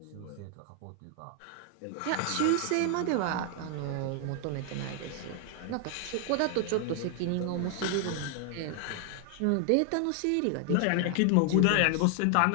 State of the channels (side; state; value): both; different; correlation 0.00